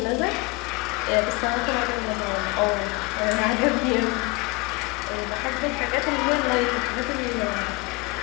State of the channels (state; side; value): quieter; right; 25.7 dB